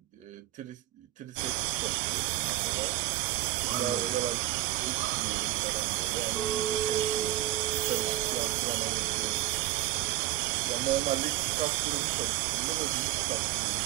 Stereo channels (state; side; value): quieter; left; 15.5 dB